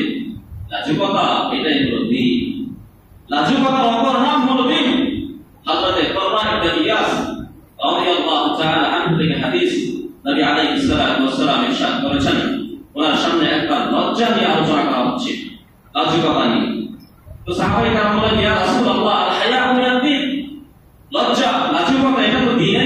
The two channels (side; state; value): both; identical; correlation 1.00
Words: লাজুকতা এটাই হলো দ্বীন। লাজুকতার অপর নাম হলো দ্বীন। হযরত কুরবান ইবনে ইয়াস রাদিয়াল্লাহু তাআলা আনহু থেকে হাদিস, নবী আলাইহিস সালাতু ওয়াস সালাম ইরশাদ করেছেন, ওনার সামনে একবার লজ্জা নিয়ে আলোচনা করা হচ্ছে, লাজুকতা নিয়ে। তো সাহাবায়ে কেরাম বলেন, ইয়া রাসূলুল্লাহ, আল হায়াউ মিনাদ দ্বীন, লজ্জা লাজুকতা এটা তো